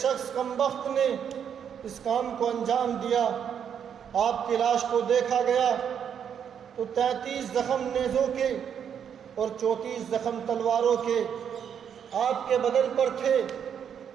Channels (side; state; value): left; quieter; 8.2 dB